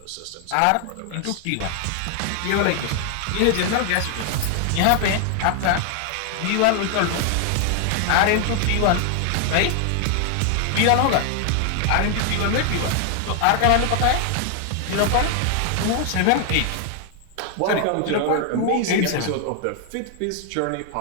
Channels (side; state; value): both; different; correlation 0.00